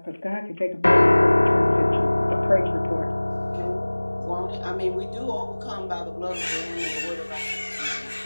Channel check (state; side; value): inverted; both; correlation -1.00